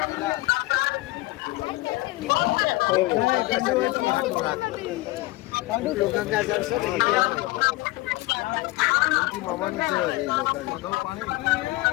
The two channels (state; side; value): quieter; right; 20.4 dB